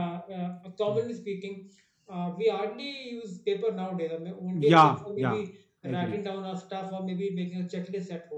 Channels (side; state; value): both; identical; correlation 1.00